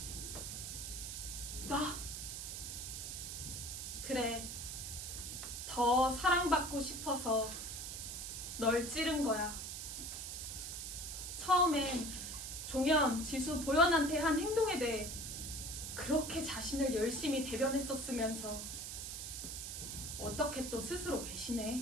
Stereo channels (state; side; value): noise; right; hiss, 6 dB below the sound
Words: 나 그래, 더 사랑받고 싶어서 널 찌른 거야. 처음엔 종현, 지수, 보현한테 한 행동에 대해 그렇게 자신을 열심히 대변했었으면서 어떻게 또 스스로 배신해.